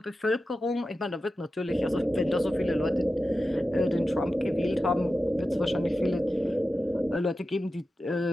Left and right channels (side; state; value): both; normal; correlation 0.92